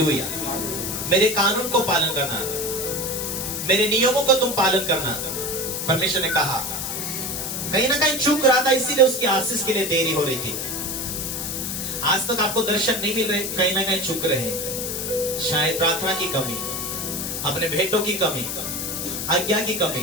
मेरे कानून को पालन करना, मेरे नियमों को तुम पालन करना। परमेश्वर ने कहा, कहीं ना कहीं चूक रहा था, इसीलिए उसकी आशीष के लिए देरी हो रही थी। आज तक आपको दर्शन नहीं मिल रहे, कहीं ना कहीं चूक रहे हैं। शायद प्रार्थना की कमी, अपने भेंटों की कमी, आज्ञा की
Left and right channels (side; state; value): left; noise; hiss, 3 dB below the sound